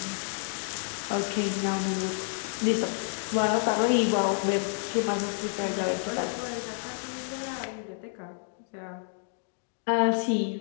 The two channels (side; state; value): right; silent; 58 dB below the other